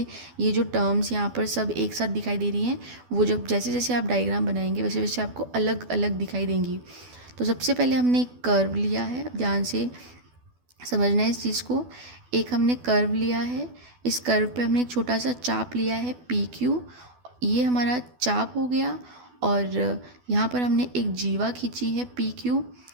ये जो टर्म्स यहाँ पर सब एक साथ दिखाई दे रही हैं, वो जब जैसे जैसे आप डायग्राम बनाएंगे वैसे वैसे आपको अलग अलग दिखाई देंगी। तो सबसे पहले हमने एक कर्व लिया है, ध्यान से समझना है इस चीज़ को। एक हमने कर्व लिया है, इस कर्व पे हमने एक छोटा सा चाप लिया है पी क्यू, ये हमारा चाप हो गया, और यहाँ पर हमने एक जीवा खींची है पी क्यू,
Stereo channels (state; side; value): late; left; 12 ms